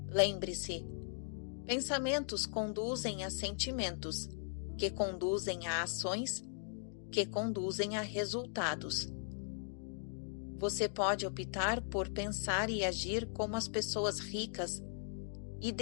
Lembre-se, pensamentos conduzem a sentimentos, que conduzem a ações, que conduzem a resultados. Você pode optar por pensar e agir como as pessoas ricas e,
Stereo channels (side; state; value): right; silent; digital silence